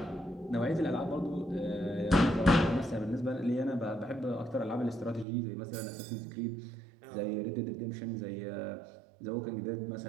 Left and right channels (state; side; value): drops out; left; at 5.2 s